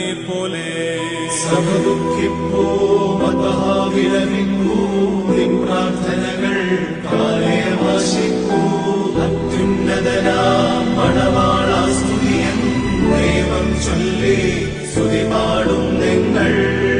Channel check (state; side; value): identical; both; correlation 1.00